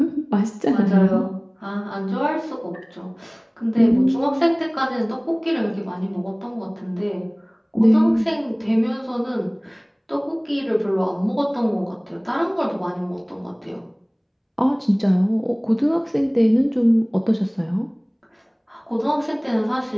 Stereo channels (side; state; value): both; identical; correlation 1.00